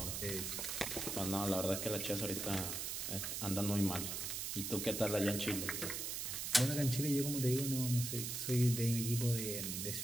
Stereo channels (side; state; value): right; noise; hiss, 3 dB below the sound